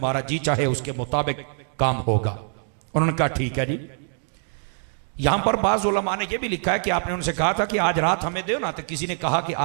जी चाहे उसके मुताबिक काम होगा। उन्होंने कहा ठीक है जी। यहां पर बाज़ उलमा ने यह भी लिखा है कि आपने उनसे कहा था कि आज रात हमें दो ना, तो किसी ने कहा कि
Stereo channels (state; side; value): silent; left; digital silence